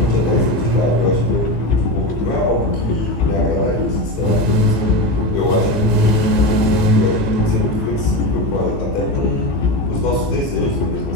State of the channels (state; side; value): late; right; 14 ms